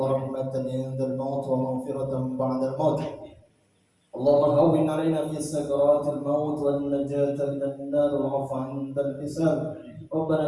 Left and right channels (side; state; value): both; identical; correlation 1.00